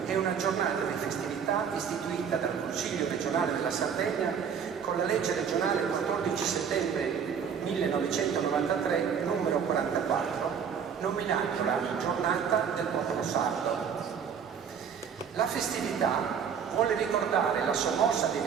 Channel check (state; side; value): quieter; left; 7.2 dB